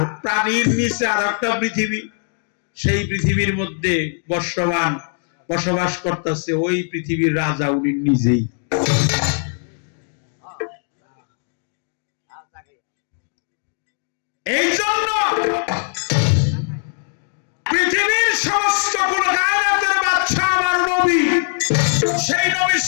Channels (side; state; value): right; silent; 56 dB below the other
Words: পানির নিচে আর একটা পৃথিবী, সেই পৃথিবীর মধ্যে বসবাস করতেছে। ওই পৃথিবীর রাজা উনি নিজেই। এই জন্য পৃথিবীর সেই নবী